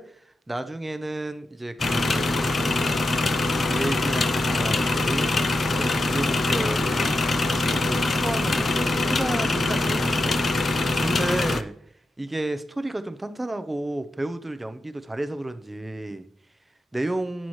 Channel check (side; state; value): both; normal; correlation 0.89